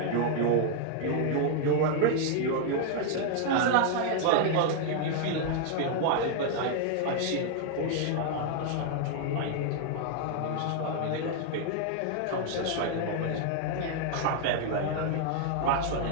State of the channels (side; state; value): both; different; correlation 0.00